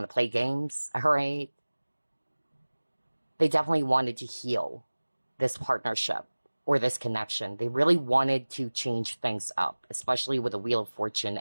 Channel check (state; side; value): inverted; both; correlation -1.00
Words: to play games, all right? They definitely wanted to heal this partnership or this connection. They really wanted to change things up, especially with the Wheel of Fortune